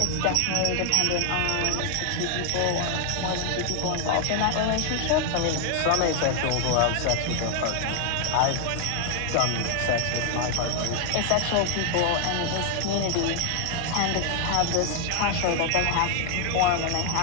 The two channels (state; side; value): different; both; correlation 0.00